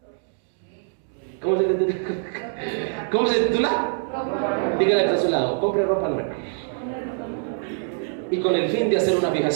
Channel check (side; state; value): left; silent; digital silence